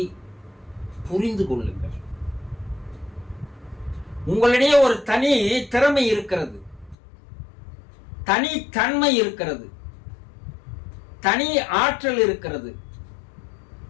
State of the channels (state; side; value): drops out; right; at 7.0 s